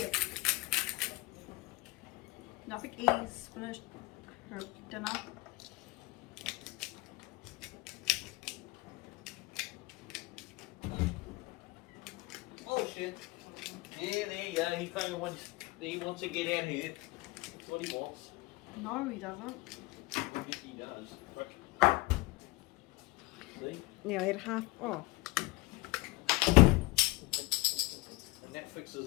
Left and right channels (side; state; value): right; quieter; 22.3 dB